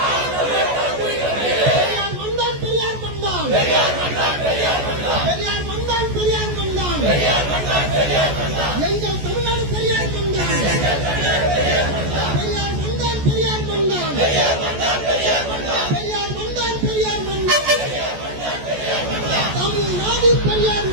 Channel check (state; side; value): late; left; 14 ms